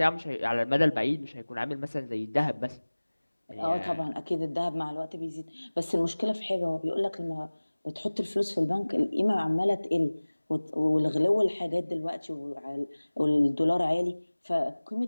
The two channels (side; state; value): both; inverted; correlation -1.00